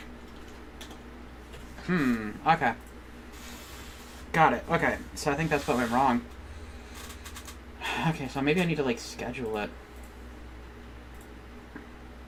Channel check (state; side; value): identical; both; correlation 1.00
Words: Okay. Got it. Okay, so I think that's what went wrong. Okay, so maybe I need to, like, schedule it.